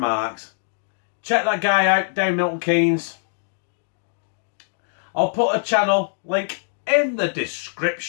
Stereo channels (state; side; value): silent; right; digital silence